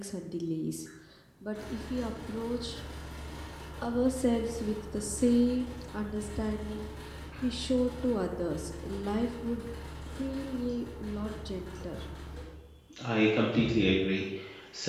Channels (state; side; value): identical; both; correlation 1.00